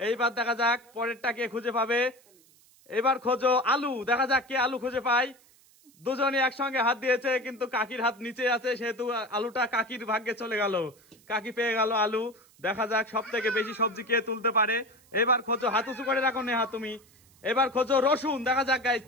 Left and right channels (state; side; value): noise; right; hiss, 29 dB below the sound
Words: এইবার দেখা যাক পরেরটা কে খুঁজে পাবে। এবার খোঁজো আলু। দেখা যাক কে আলু খুঁজে পায়। দুজনে একসঙ্গে হাত দিয়েছে, কিন্তু কাকির হাত নিচে আছে, সেহেতু আলুটা কাকির ভাগ্যে চলে গেল। কাকি পেয়ে গেল আলু। দেখা যাক সব থেকে বেশি সবজি কে তুলতে পারে। এবার খোঁজো, হাত উঁচু করে রাখো নেহা তুমি। এবার খোঁজো রসুন। দেখা যাক গাইস